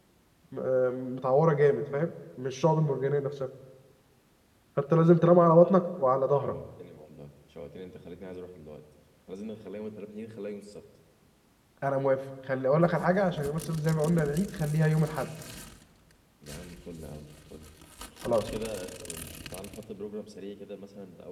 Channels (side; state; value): both; identical; correlation 1.00